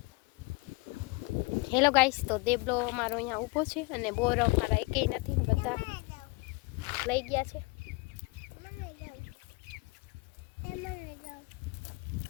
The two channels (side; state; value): right; quieter; 25.9 dB